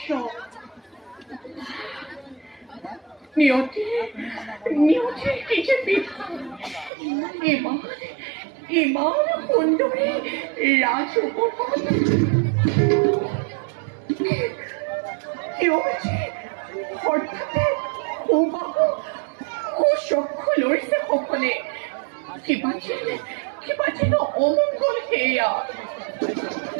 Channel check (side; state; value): left; drops out; at 6.9 s